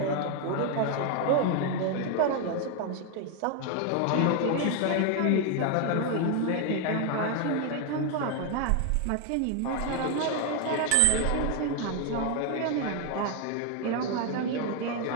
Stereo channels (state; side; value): different; both; correlation 0.01